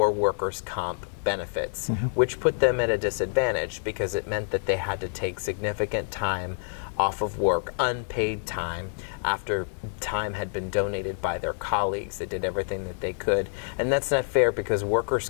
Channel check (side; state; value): right; silent; digital silence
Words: workers' comp benefits, which put them at a disadvantage because it meant that they had to take significant time off of work, unpaid time, after time had been donated by their colleagues. They did everything that they could. And that's not fair because workers'